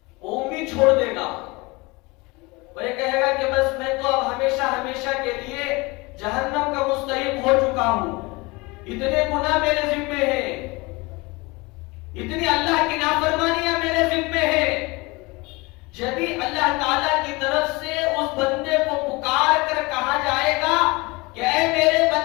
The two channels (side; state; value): right; quieter; 24.7 dB